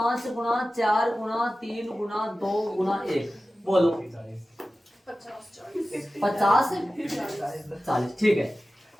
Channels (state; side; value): normal; both; correlation 0.95